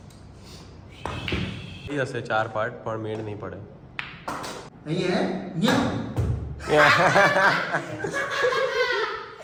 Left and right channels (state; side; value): identical; both; correlation 1.00